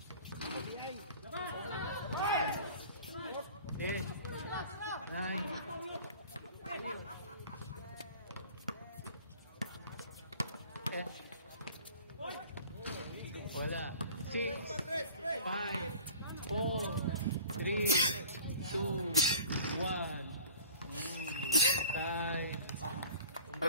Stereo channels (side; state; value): both; inverted; correlation -0.44